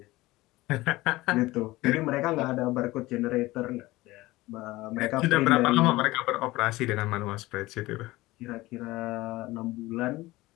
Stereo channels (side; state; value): right; quieter; 19.2 dB